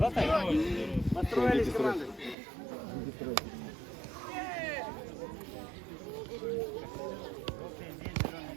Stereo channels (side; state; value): left; drops out; at 2.4 s